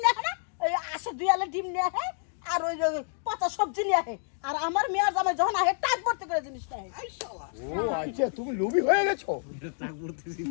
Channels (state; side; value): silent; right; 59 dB below the other